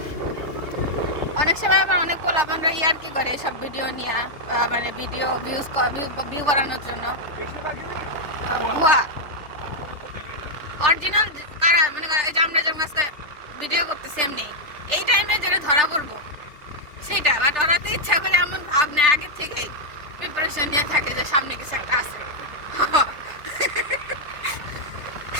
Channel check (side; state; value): left; late; 3.3 ms